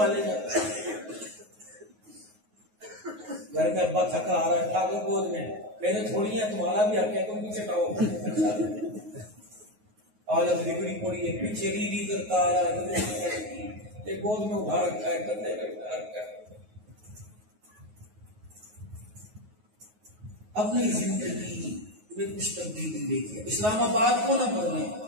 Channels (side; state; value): left; late; 9.4 ms